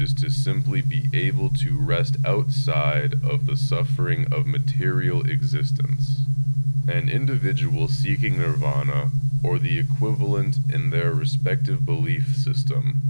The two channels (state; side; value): inverted; both; correlation -1.00